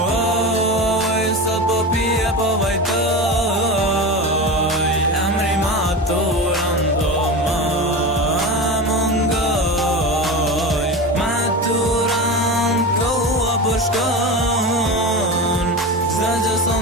sot po pije po vajtoj, emri maturan do më mungoj. Maturan koha po shkon, s'da që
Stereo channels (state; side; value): normal; both; correlation 0.25